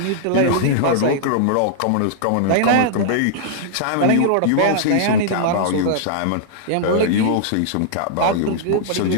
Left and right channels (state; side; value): different; both; correlation -0.01